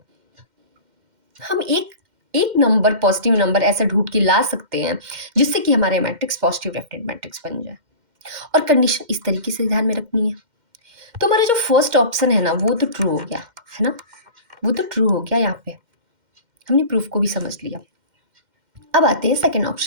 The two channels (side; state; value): left; late; 2.1 ms